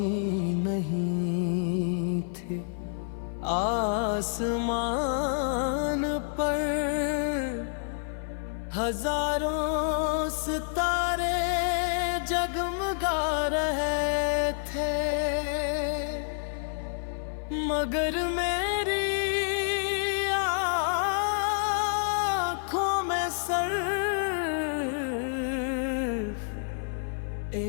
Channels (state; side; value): silent; right; 56 dB below the other